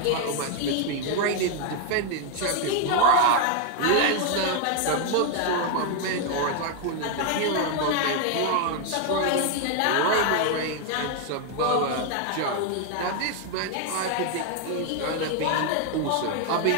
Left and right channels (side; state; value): both; different; correlation 0.00